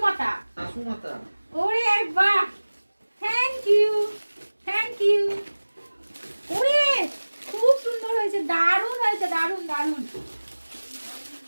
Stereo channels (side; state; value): both; inverted; correlation -1.00